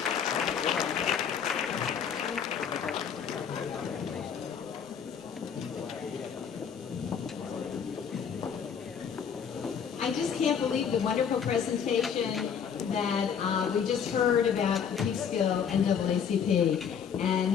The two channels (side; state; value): right; quieter; 7.4 dB